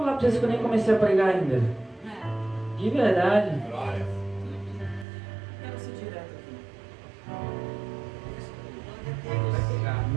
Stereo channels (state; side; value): drops out; left; at 5.1 s